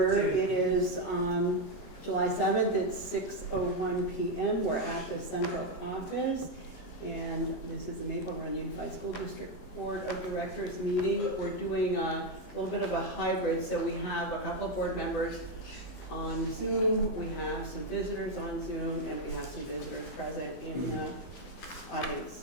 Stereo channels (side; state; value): right; late; 22 ms